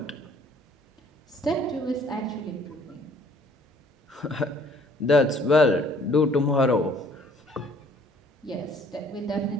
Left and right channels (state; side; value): normal; both; correlation 0.58